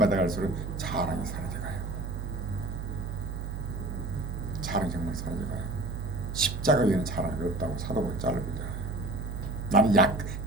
자랑이 사라져가요. 자랑이 정말 사라져가요. 십자가 위에는 자랑이 없다고 사도가 잘라보잖아요. 나는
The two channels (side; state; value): right; noise; hum, 5 dB below the sound